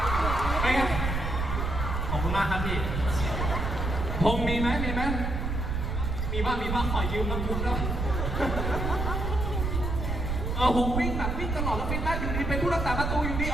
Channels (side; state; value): right; noise; rumble, 1 dB below the sound